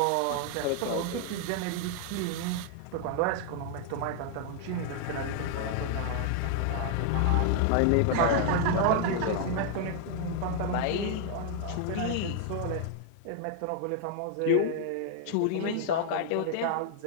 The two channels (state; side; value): different; both; correlation 0.00